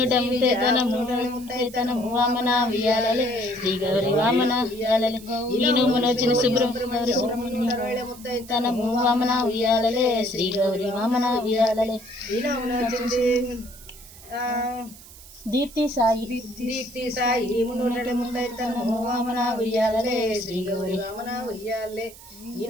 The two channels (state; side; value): noise; right; hiss, 19 dB below the sound